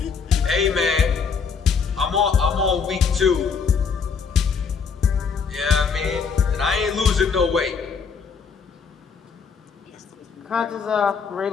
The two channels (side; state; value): right; quieter; 5.7 dB